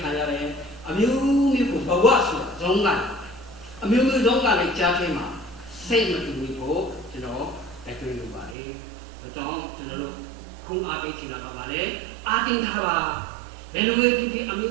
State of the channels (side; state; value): left; drops out; at 8.6 s